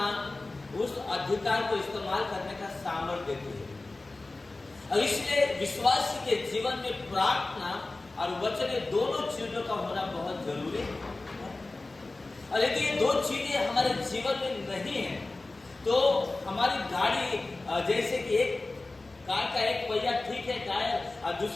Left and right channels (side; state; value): right; quieter; 3.2 dB